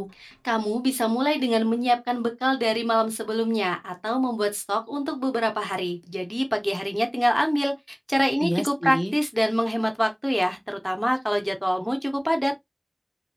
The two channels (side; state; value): both; identical; correlation 1.00